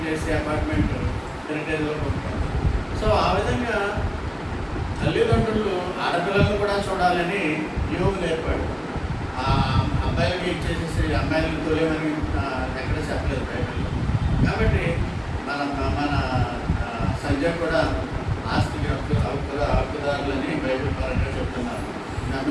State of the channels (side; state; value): both; identical; correlation 1.00